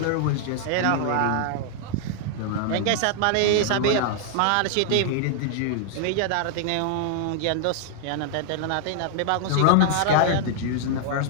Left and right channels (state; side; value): different; both; correlation -0.01